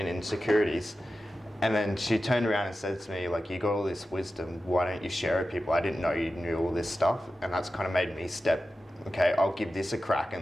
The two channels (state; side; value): normal; both; correlation 0.93